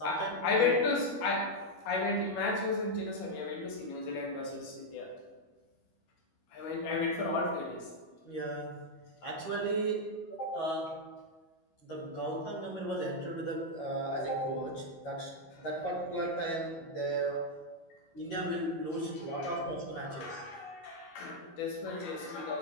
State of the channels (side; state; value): right; late; 12 ms